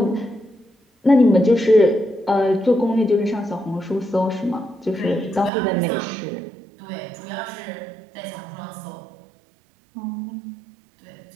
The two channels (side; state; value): left; drops out; at 5.5 s